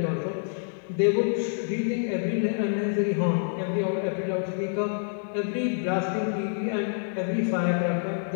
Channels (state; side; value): silent; right; 60 dB below the other